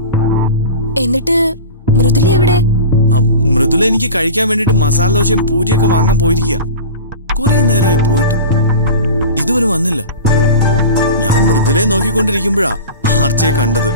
എന്നിട്ട് മൃദുല എവിടെ? മൃദുല എനിക്ക് കഴിക്കാൻ വേണ്ടിട്ട് മസാല ദോശയും പൂരിയൊക്കെ വാങ്ങാൻ പോയിരിക്കുക. കുറെ നേരമായി പോയിട്ട് ഇതുവരെ വന്നില്ല. ഞാൻ മൃദുലയെ നോക്കിക്കൊണ്ടിരിക്കുമ്പോഴാ ആർച്ചയെ കണ്ടത്.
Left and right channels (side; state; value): both; inverted; correlation -0.33